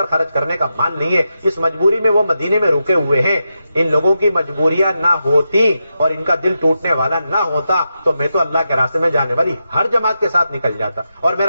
خرچ کرنے کا مال نہیں ہے, اس مجبوری میں وہ مدینے میں رکے ہوئے ہیں. ان لوگوں کی مجبوریاں نہ ہوتی اور ان کا دل ٹوٹنے والا نہ ہوتا تو میں تو اللہ کے راستے میں جانے والی ہر جماعت کے ساتھ نکل جاتا, اور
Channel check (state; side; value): inverted; both; correlation -0.88